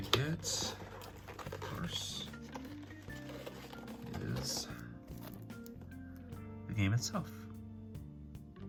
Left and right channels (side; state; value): both; identical; correlation 1.00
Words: get, of course, is the game itself.